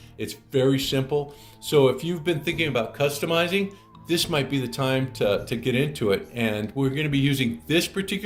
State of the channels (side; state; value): both; identical; correlation 1.00